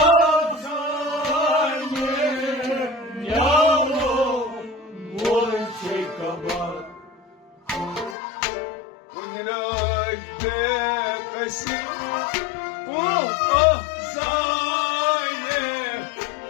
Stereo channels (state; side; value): drops out; right; at 8.2 s